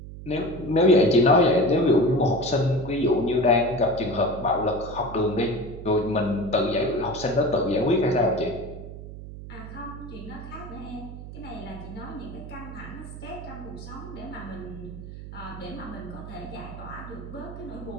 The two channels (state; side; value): noise; right; hum, 12 dB below the sound